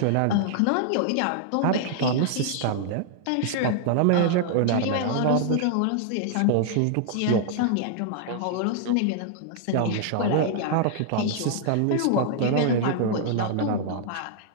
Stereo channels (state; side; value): different; both; correlation -0.01